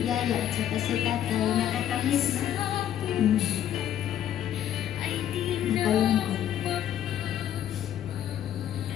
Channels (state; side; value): quieter; right; 10.8 dB